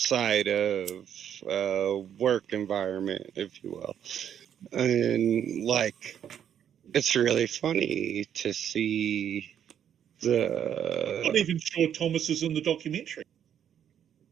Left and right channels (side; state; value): left; quieter; 9.3 dB